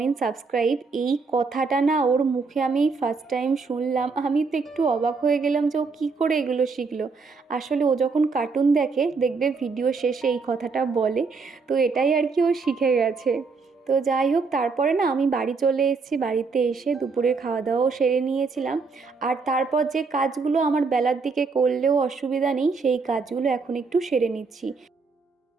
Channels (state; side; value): quieter; left; 4.6 dB